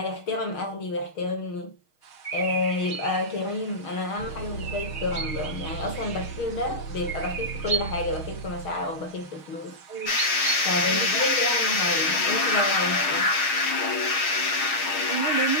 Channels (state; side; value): late; right; 6.4 ms